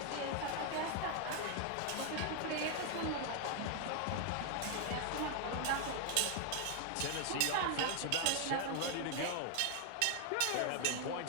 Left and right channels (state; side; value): different; both; correlation 0.00